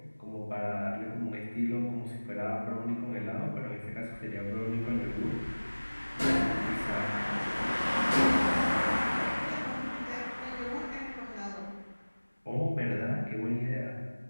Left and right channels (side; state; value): both; inverted; correlation -1.00